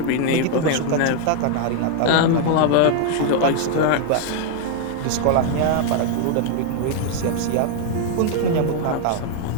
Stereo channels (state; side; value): different; both; correlation 0.00